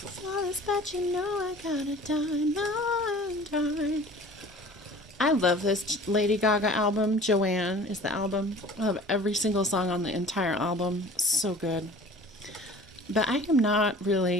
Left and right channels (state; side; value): normal; both; correlation 0.45